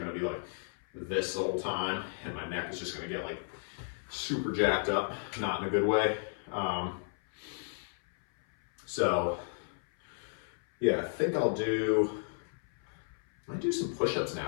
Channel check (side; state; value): right; silent; 55 dB below the other